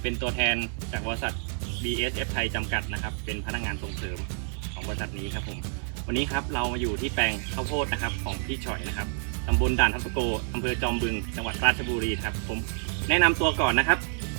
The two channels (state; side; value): silent; left; 57 dB below the other